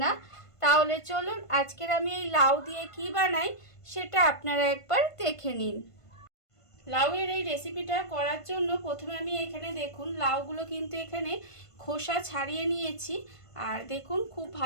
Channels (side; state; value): right; late; 1.5 ms